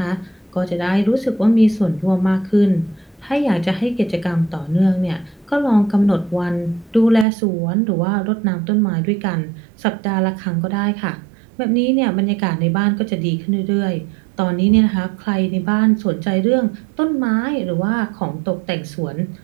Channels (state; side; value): drops out; left; at 7.2 s